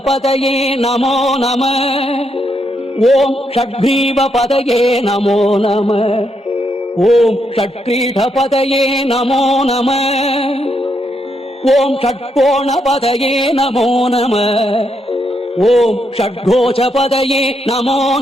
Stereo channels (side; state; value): both; normal; correlation 0.79